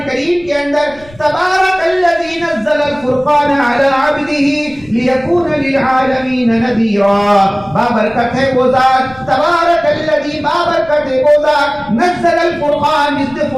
کریم کے اندر تبارک الذی نزل الفرقان علی عبدہ لیکون للعالمین نذیرا، بابرکت ہے وہ ذات، تبارک الذی بابرکت ہے وہ ذات، نزل الفرقان، جس نے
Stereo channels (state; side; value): noise; left; rumble, 24 dB below the sound